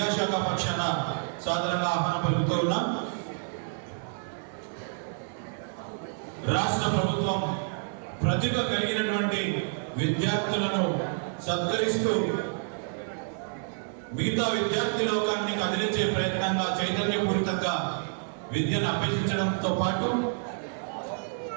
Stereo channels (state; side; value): silent; left; digital silence